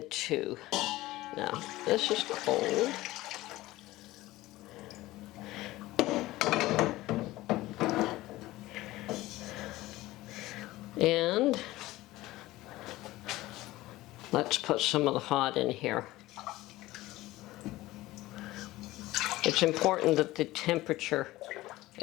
2. Now, this is cold. And let's put some of the hot in here. It's important that the temperature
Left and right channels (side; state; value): right; quieter; 17.7 dB